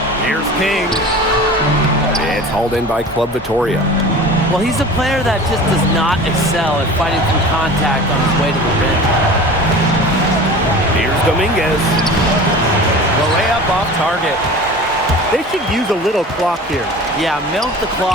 Here's King. It's hauled in by Club Vitoria. Well, he's a player that just does not excel at fighting through contact on his way to the rim. Here's Dominguez. The layup off target. They should use a little clock here. Yeah, milk the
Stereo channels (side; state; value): both; normal; correlation 0.38